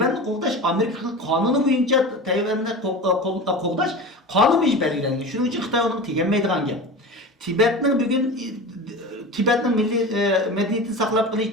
qoğdaş Amerika kanunu boyunca Tayvan'ı qoğdaş kanun boyunca belirlenген. Şunun için Xitay onu tegenmeydigan gap. Tibet'nin milli medeniyetini saklap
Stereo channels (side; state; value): both; normal; correlation 0.31